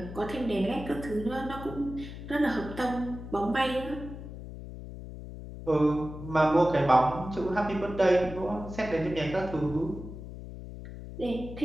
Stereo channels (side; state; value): left; noise; hum, 11 dB below the sound